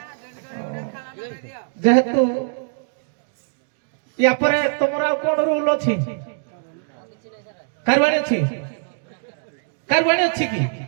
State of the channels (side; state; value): left; silent; digital silence